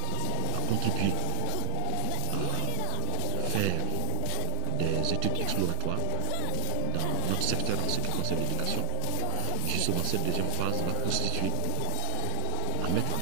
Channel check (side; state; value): both; different; correlation 0.00